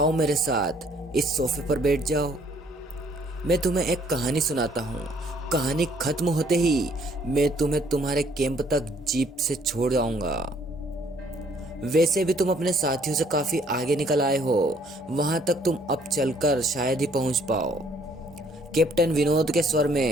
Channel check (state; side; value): normal; both; correlation 0.63